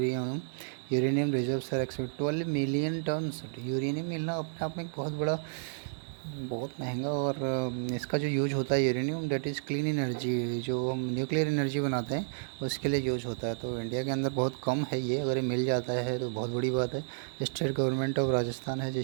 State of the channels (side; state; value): left; silent; 57 dB below the other